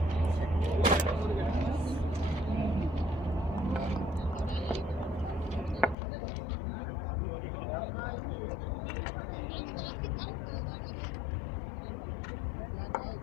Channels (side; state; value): right; drops out; at 6.0 s